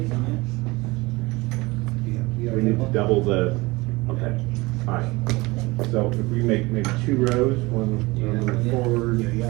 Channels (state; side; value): quieter; left; 22.5 dB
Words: We need to double the, okay, all right. So if we make maybe 2 rows, one forward,